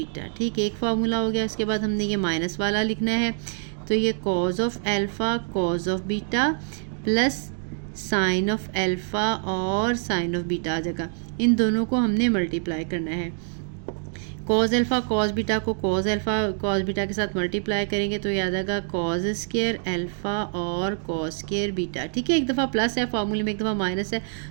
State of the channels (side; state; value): left; silent; 61 dB below the other